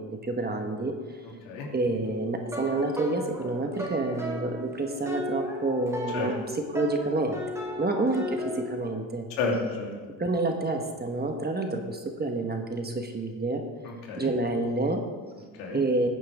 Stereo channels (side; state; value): both; normal; correlation 0.38